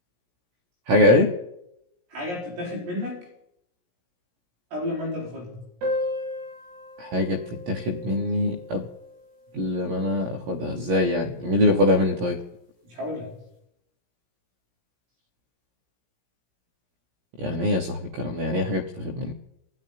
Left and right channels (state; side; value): late; left; 17 ms